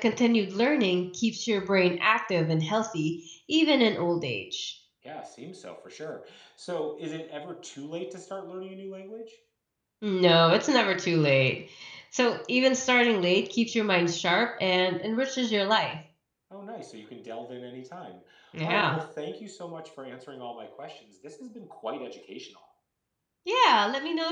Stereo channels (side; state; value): both; identical; correlation 1.00